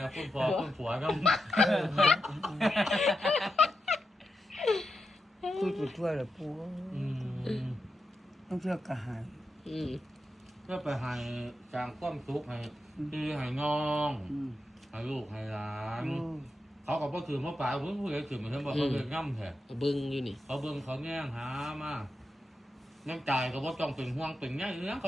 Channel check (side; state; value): both; normal; correlation 0.87